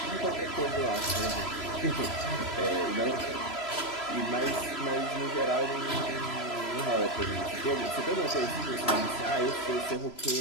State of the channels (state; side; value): late; right; 3.0 ms